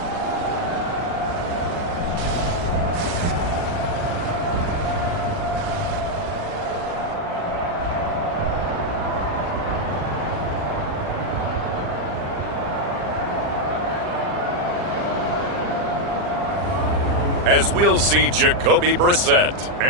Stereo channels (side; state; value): left; late; 40 ms